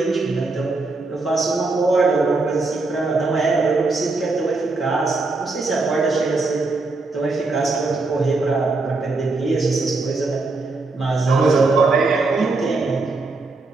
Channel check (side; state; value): left; quieter; 3.5 dB